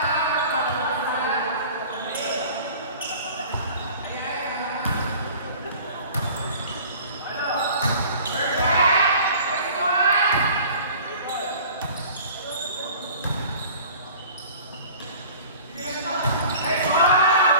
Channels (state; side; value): inverted; both; correlation -0.46